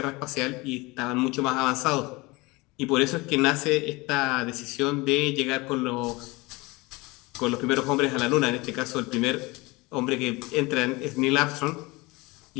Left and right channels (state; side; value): quieter; right; 23.7 dB